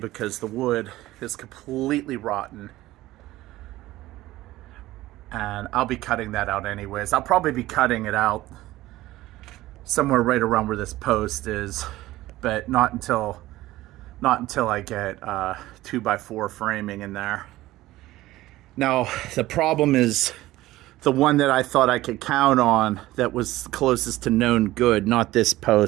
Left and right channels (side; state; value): left; quieter; 16.7 dB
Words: the wood is completely rotten. And I'll be cutting that out anyways. I'll probably be cutting it out somewhere right around where this post is, but not until I get 2x4 framing in there. Now, the problem is the one that I thought I could count on that was closest to known good, not this